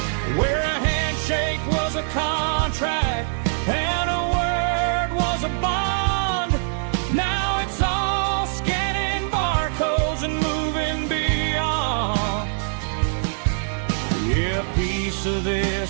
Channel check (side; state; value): left; silent; 58 dB below the other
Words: where a handshake was a contract and a word was a bond. Now it's all scanning barcodes and moving beyond. Yeah, a piece of